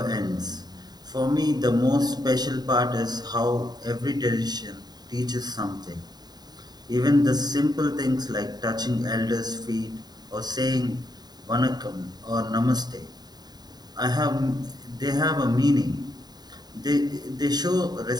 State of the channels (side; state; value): left; late; 0.20 ms